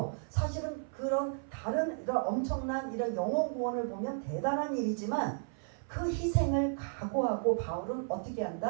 사실은 그런 다른 이런 엄청난 이런 영혼 구원을 보면 대단한 일이지만 그 희생을 각오하고 바울은 어떻게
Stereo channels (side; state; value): left; silent; 55 dB below the other